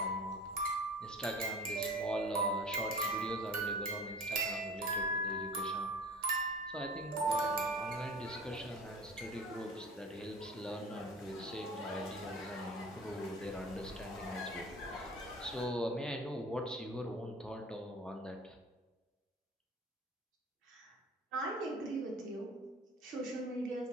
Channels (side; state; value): both; normal; correlation 0.40